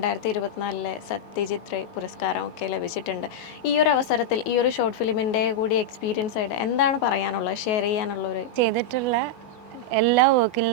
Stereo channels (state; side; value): late; right; 17 ms